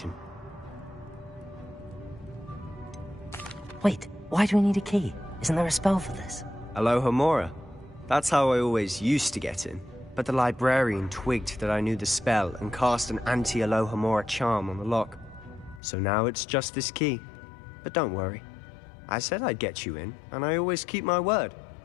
Wait, why do we need a key? Isn't there a spell for this? Alohomora. That's how I always used to get in. But the librarian twigged that I knew the spell and cast an anti-Alohomora charm on the lock. So now it's just this key. But don't worry. I said I'd get you in, and I always keep my word.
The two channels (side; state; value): right; drops out; at 15.8 s